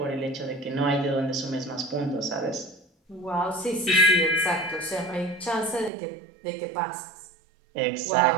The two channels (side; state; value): left; drops out; at 5.9 s